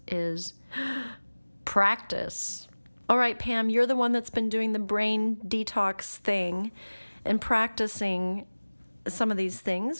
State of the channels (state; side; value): inverted; both; correlation -1.00